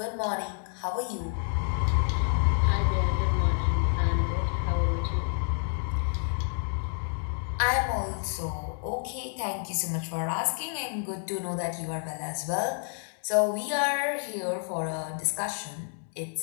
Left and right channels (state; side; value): silent; right; digital silence